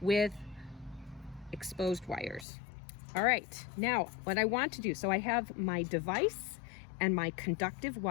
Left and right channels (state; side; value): drops out; right; at 2.5 s